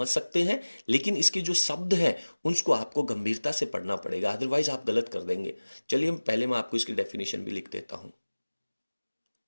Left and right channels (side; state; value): both; inverted; correlation -1.00